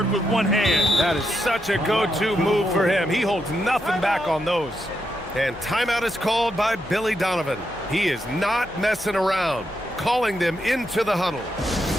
with one hand. That is such a go-to move for him. He holds nothing back on those. And timeout is called by Billy Donovan. He is not messing around, calling them into the huddle.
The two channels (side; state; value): left; noise; hum, 21 dB below the sound